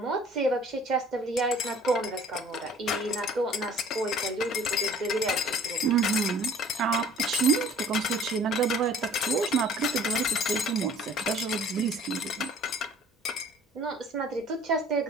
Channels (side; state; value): both; normal; correlation 0.51